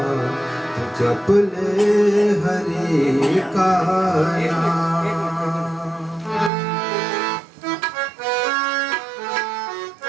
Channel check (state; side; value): drops out; left; at 6.5 s